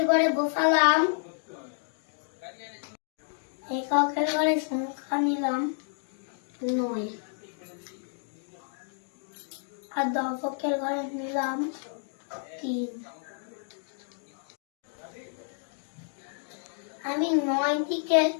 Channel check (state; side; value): silent; right; 58 dB below the other